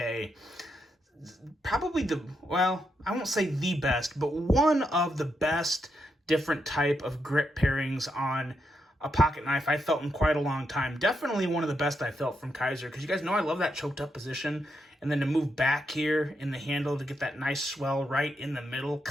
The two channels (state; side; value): normal; both; correlation 0.82